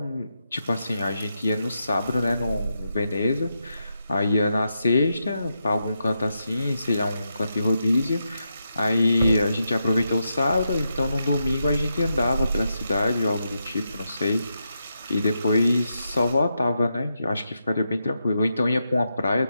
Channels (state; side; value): inverted; both; correlation -0.85